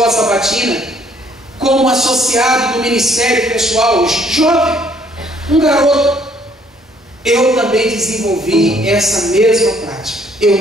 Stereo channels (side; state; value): both; normal; correlation 0.64